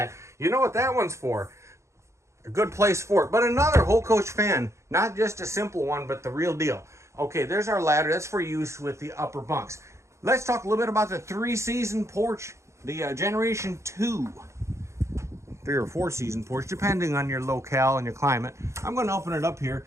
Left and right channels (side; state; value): left; late; 0.14 ms